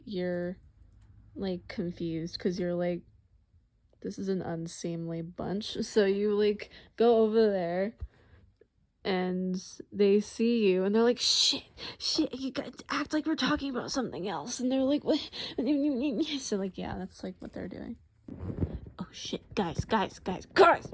you're like confused because you're like, this is an unseemly bunch. So you like go over there and they see you and they're like, shit, you guys act like we're talking about something else. And they're like, what? So like, yeah, that's like what they're doing. Oh shit, guys.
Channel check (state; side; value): identical; both; correlation 1.00